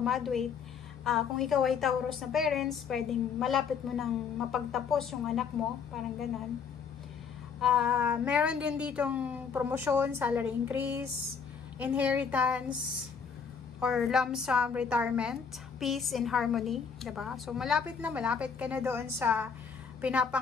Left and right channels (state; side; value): quieter; right; 6.3 dB